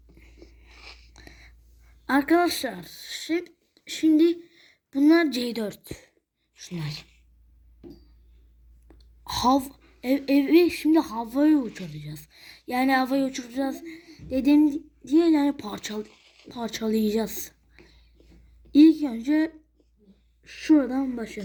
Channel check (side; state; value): both; identical; correlation 1.00